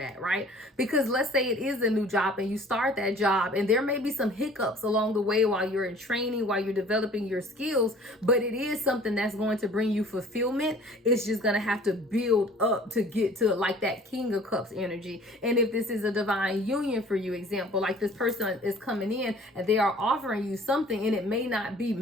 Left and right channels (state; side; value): normal; both; correlation 0.50